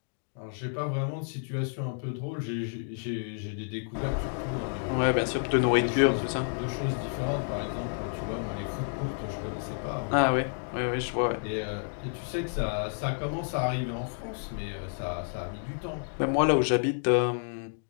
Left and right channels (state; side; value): silent; right; digital silence